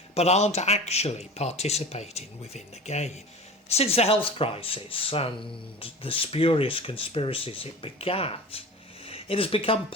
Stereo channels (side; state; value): both; normal; correlation 0.35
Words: but aren't actually participating within the game. Since the health crisis and the spurious conspiracies it begat, it has become